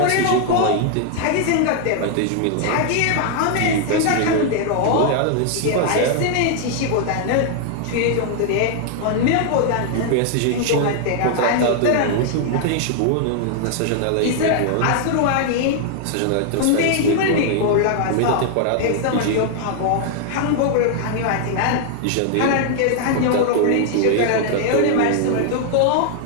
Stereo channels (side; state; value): both; different; correlation 0.00